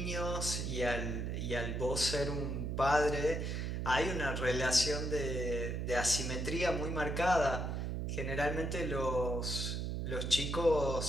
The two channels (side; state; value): right; noise; hum, 2 dB below the sound